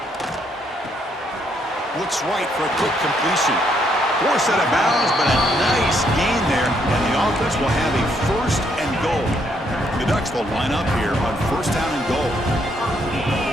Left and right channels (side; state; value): both; normal; correlation 0.72